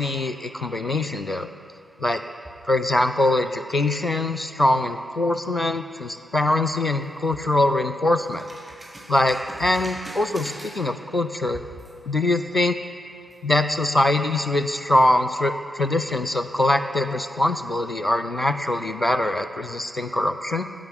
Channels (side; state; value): both; normal; correlation 0.84